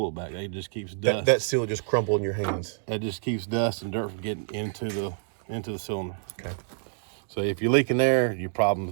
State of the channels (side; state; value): left; silent; digital silence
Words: back. It just keeps dust. That seal just crumbled in your hands. It just keeps dust and dirt from getting into the cylinder. Okay. So if you're leaking there, your